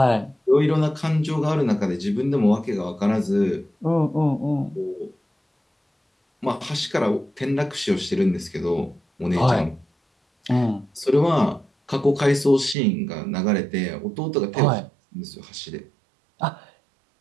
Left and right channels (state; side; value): drops out; left; at 12.8 s